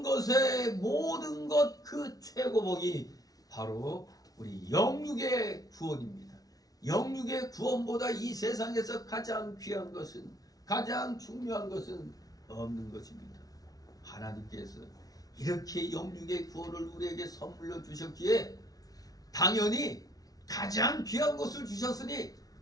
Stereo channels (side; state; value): right; late; 0.18 ms